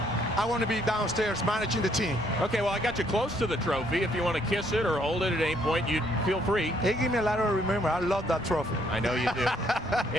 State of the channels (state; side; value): noise; left; rumble, 16 dB below the sound